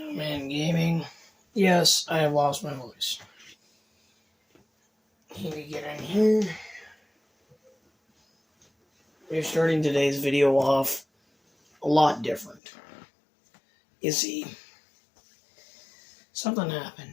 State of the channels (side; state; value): right; drops out; at 12.6 s